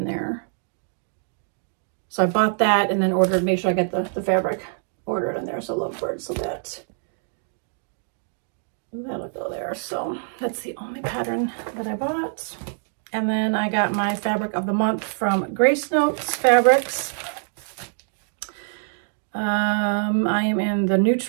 there. So I bought that and then ordered, make sure I get the fabric ordered in there. So Lovebird, so that'll go there. So that's the only pattern that I bought. And then I got my fabric of the month from Grace Notes Fabrics. I am in the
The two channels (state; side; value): silent; left; digital silence